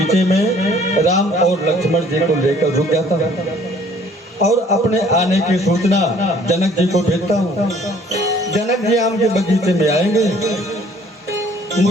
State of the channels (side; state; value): both; normal; correlation 0.57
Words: में राम और लक्ष्मण जी को लेकर रुक जाता हूँ और अपने आने की सूचना जनक जी को भेजता हूँ। जनक जी आम के बगीचे में आएंगे,